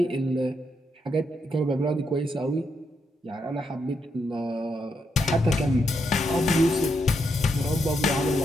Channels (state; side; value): normal; both; correlation 0.80